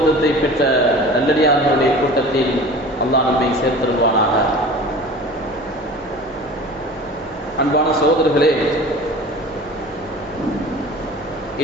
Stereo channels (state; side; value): noise; left; hum, 26 dB below the sound